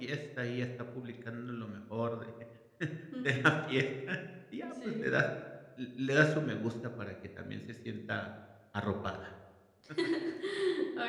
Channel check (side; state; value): both; identical; correlation 1.00